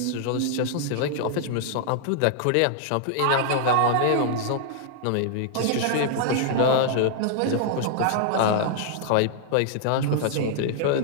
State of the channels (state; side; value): different; both; correlation -0.01